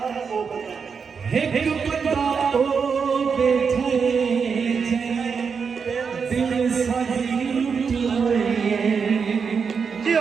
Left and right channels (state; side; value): quieter; left; 5.9 dB